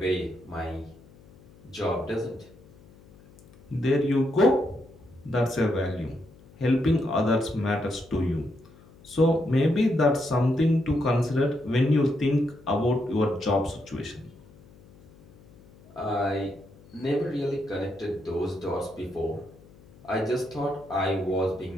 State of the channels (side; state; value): left; noise; hum, 24 dB below the sound